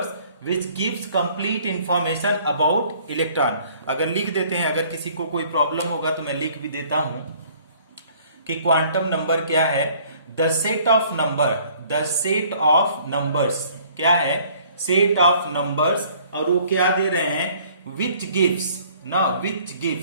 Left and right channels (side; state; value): both; inverted; correlation -0.57